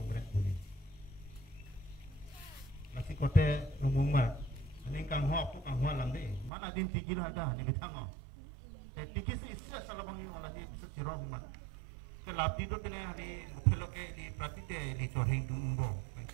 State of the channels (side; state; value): left; drops out; at 6.5 s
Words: बोली masih kote rumumar ini kang ho aku kang ho lamde mana din tikir ada ni bitang te tikis issa salabang malah di siro man ke labdi to tene hari phelo ke di prapite di chohing dumbo